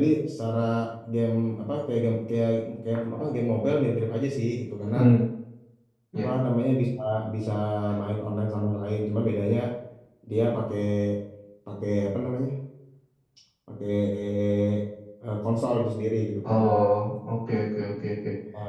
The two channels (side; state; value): both; identical; correlation 1.00